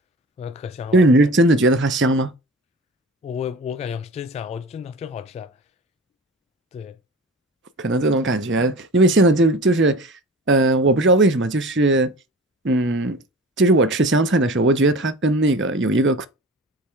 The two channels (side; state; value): both; normal; correlation 0.37